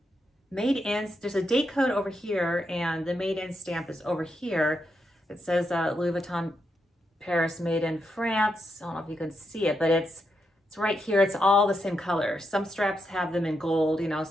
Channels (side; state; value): both; normal; correlation 0.83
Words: made in, there's a date code over here, and the made in stamp is over here. It says Louis Vuitton Paris, made in France. I don't know if you can see it, but it's right here. It's all the same color. Some straps have them in gold,